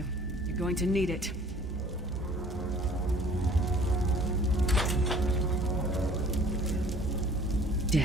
You're going to need it.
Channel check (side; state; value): both; normal; correlation 0.52